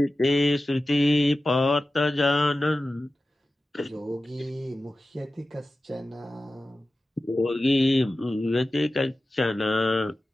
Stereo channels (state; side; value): normal; both; correlation 0.94